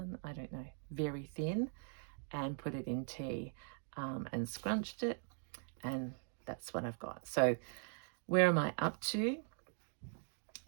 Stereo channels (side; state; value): left; silent; 50 dB below the other